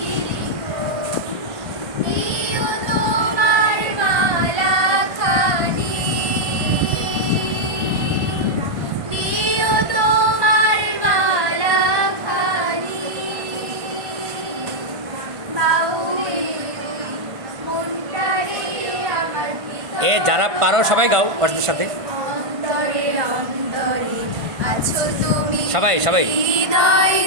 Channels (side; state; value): left; late; 1.5 ms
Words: লিখো। দিও তোমার মালাখানি, দিও তোমার মালাখানি, বাউলে মনটারে আমার এ যারা পারো সবাই গাও ওদের সাথে। অন্তরে অন্তরে আছো তুমি, সবাই সবাই। হৃদয়